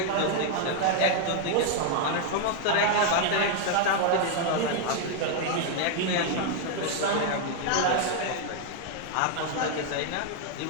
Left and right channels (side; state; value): both; different; correlation 0.00